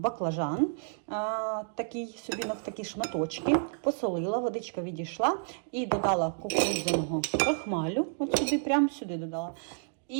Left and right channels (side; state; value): left; silent; digital silence